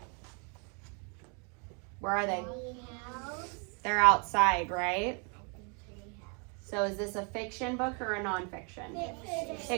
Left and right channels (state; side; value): quieter; left; 36.1 dB